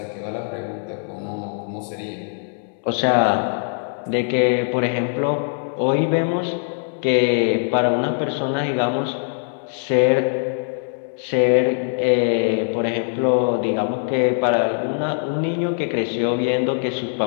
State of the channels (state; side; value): silent; right; 64 dB below the other